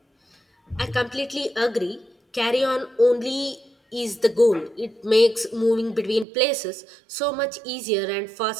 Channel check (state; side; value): drops out; left; at 6.2 s